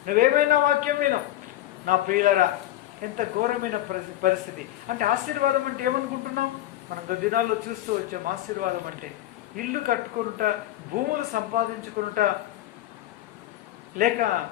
నువ్వేమైనా వాక్యం వినవు. నా ప్రియులరా, ఎంత ఘోరమైన పరిస్థితి. అంటే ఆశీర్వాదం అంటే ఏమనుకుంటున్నాం? మనం దినాల్లో చూస్తూ వచ్చాం. ఆశీర్వాదం అంటే ఇల్లు కట్టుకుంట, భూములు సంపాదించుకుంట, లేక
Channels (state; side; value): quieter; right; 14.1 dB